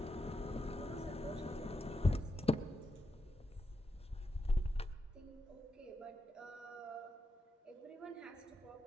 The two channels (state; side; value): normal; both; correlation 0.86